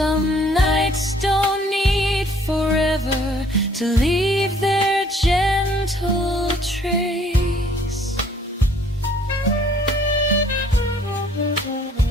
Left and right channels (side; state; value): both; normal; correlation 0.59